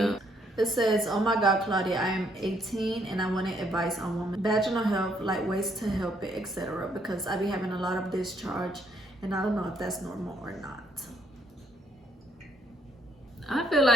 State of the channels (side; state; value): both; normal; correlation 0.70